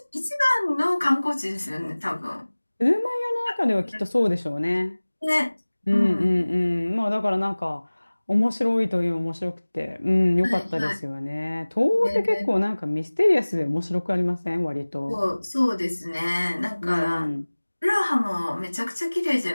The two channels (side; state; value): both; inverted; correlation -1.00